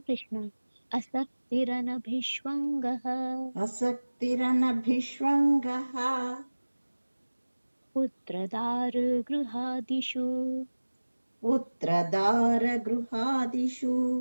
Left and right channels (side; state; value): both; inverted; correlation -1.00